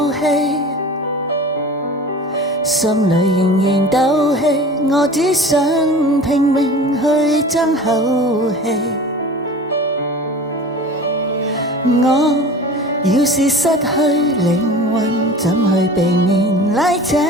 氣，心裏仍然鬥氣，我只想拼命去爭口氣。我要是失去靈魂，怎去避免拉扯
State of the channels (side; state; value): both; normal; correlation 0.39